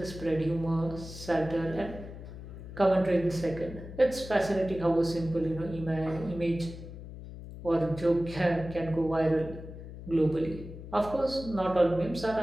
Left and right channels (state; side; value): noise; left; hum, 12 dB below the sound